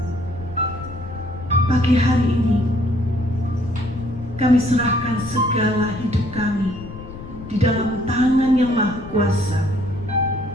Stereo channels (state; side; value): noise; left; rumble, 13 dB below the sound